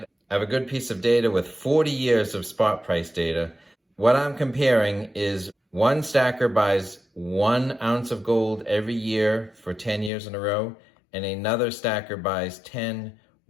I have a good piece of data with 40 years of spot price data. What I'm comparing is one stacker buys 1 ounce of gold every year for 10 years in a row, and another stacker buys 10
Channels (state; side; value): drops out; right; at 10.1 s